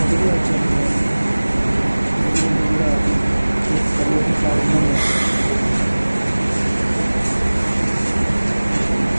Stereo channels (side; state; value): both; inverted; correlation -1.00